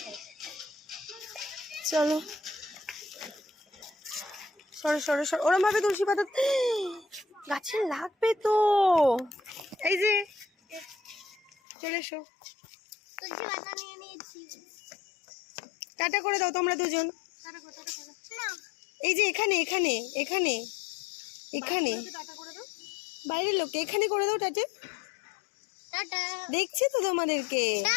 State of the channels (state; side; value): drops out; right; at 11.5 s